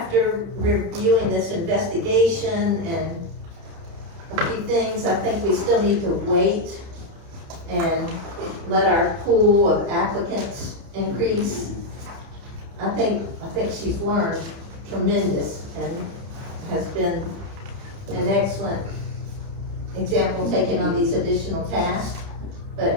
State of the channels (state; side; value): late; left; 30 ms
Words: reviewing this investigation and a few things, I think we still need to wait and let our pool of applicants increase. I think she's learned tremendous and has been an excellent example taking on these additional tasks.